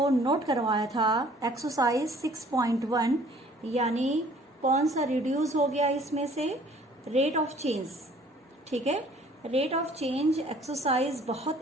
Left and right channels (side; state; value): both; normal; correlation 0.55